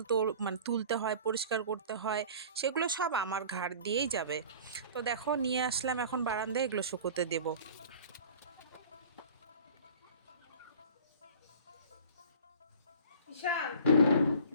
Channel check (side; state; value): both; inverted; correlation -0.43